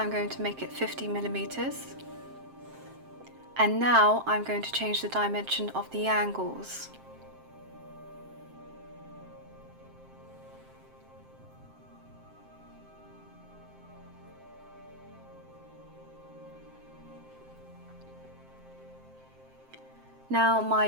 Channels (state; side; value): late; left; 7.6 ms